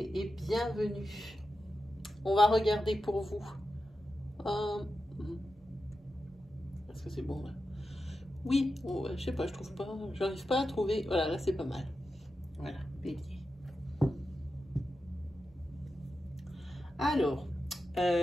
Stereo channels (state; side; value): normal; both; correlation 0.90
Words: et bienvenue. On va regarder pour vous. Est-ce que c'est bon là? Oui, oh, je sais pas, je trouve pas, j'arrive pas à trouver. Voilà, là c'est pas mal. Voilà, bélier. Alors,